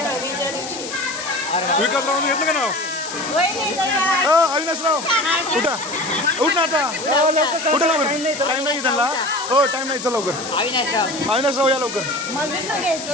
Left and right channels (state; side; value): noise; left; hiss, 9 dB below the sound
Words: हळदीच्या दिवशी. विकासरावांनी घेतलं का नाव. अविनाशराव उठा उठ ना आता. उठा लवकर. टाइम नाही त्यांना. हो टाइम नाही. चल लवकर. अविनाशराव या लवकर.